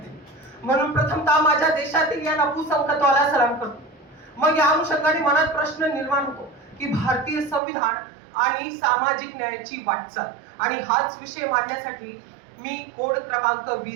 म्हणून प्रथमतः माझ्या देशातील या नपुसंकत्वाला सलाम करतो. मग या अनुषंगाने मनात प्रश्न निर्माण होतो की भारतीय संविधान आणि सामाजिक न्यायाची वाटचाल, आणि हाच विषय मांडण्यासाठी मी कोड क्रमांक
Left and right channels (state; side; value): drops out; left; at 7.6 s